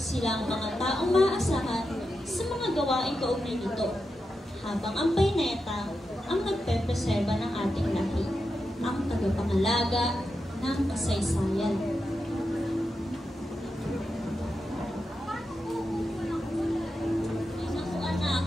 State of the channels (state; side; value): normal; both; correlation 0.88